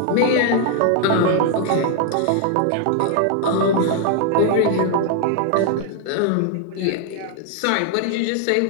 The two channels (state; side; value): different; both; correlation 0.00